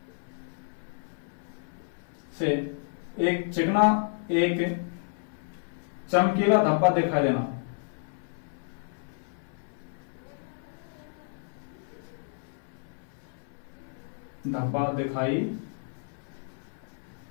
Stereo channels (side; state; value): right; silent; 57 dB below the other